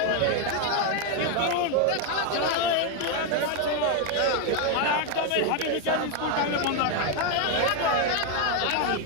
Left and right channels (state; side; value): different; both; correlation 0.01